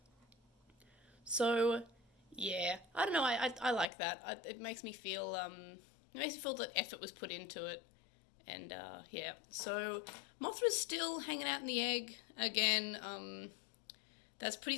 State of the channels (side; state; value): right; drops out; at 3.9 s